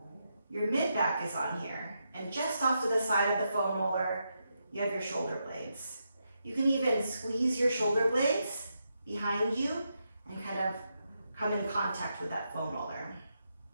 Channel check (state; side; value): inverted; both; correlation -0.83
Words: your mid-back is on here. And just off to the side of the foam roller, you have your shoulder blades. You can even squeeze your shoulder blades behind you and kind of come in contact with that foam roller.